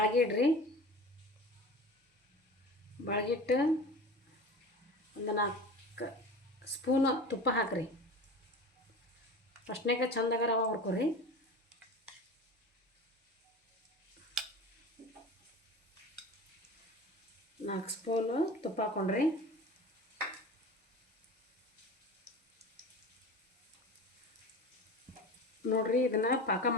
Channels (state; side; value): normal; both; correlation 0.34